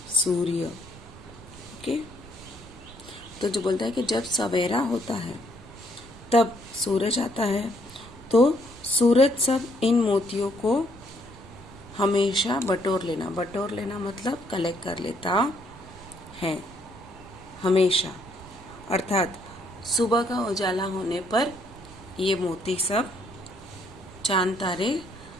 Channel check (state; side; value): noise; right; rumble, 18 dB below the sound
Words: सूर्य, ओके। तो जो बोलता है कि जब सवेरा होता है तब सूरज आता है तो सूरज सब इन मोतियों को हमेशा बटोर लेना, बटोर लेना मतलब कलेक्ट कर लेता है हमेशा। अर्थात सुबह का उजाला होने पर ये मोती सब चांद तारे